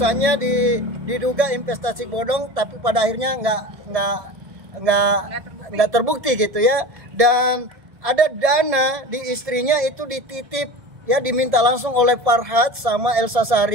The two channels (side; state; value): left; late; 1.7 ms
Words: diduga investasi bodong, tapi pada akhirnya nggak terbukti gitu ya. Dan ada dana di istrinya itu dititip ya, diminta langsung oleh Farhad sama Elsa